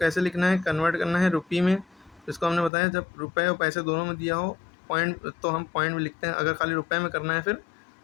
लिखना है, कन्वर्ट करना है रुपये में। इसको हमने बताया, जब रुपये और पैसे दोनों में दिया हो पॉइंट, तो हम पॉइंट में लिखते हैं। अगर खाली रुपये में करना है फिर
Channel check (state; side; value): drops out; right; at 2.7 s